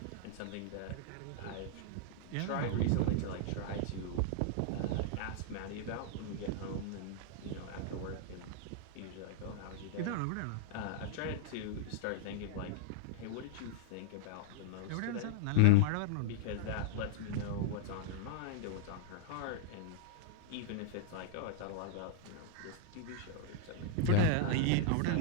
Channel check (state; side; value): different; both; correlation -0.01